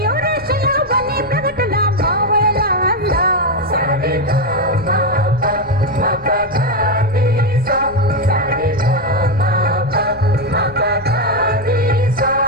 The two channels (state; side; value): noise; left; rumble, 24 dB below the sound